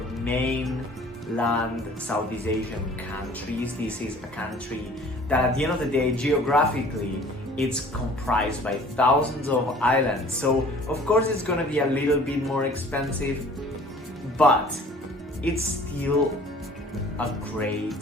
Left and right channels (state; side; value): normal; both; correlation 0.50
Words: mainland Southeast Asian countries. This is a country that at the end of the day, geographically, it's comprised by thousands of islands. So of course it's gonna be a little bit more expensive, but it's still a great